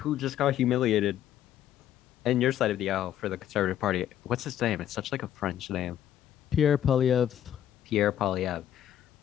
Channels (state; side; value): quieter; right; 11.1 dB